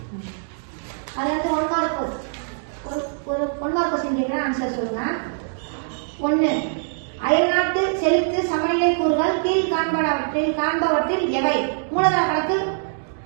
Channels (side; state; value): left; silent; digital silence